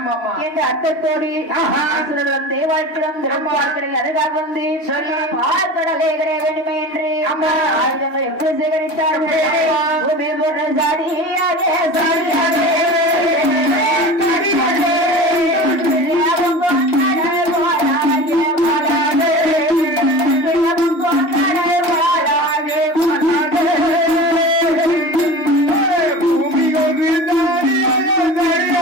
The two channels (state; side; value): late; right; 3.1 ms